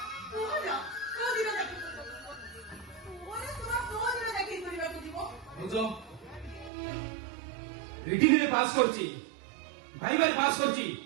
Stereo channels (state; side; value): drops out; left; at 6.7 s